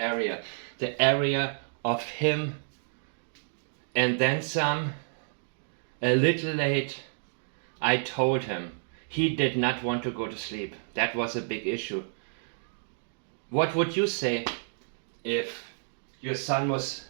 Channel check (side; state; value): left; silent; digital silence